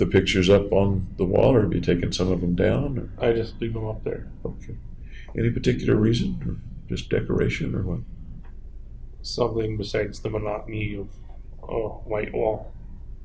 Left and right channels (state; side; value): identical; both; correlation 1.00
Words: pictures up on the wall, or have you taken some of them down? Or? I just leave them up there. Okay. Any particular reason, or just decoration, or what? Something besides the monotony of a white wall.